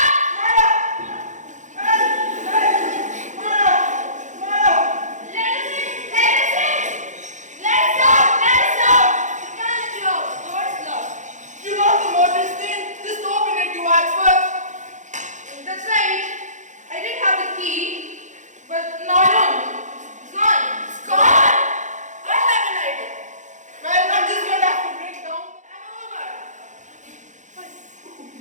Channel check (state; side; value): late; left; 0.35 ms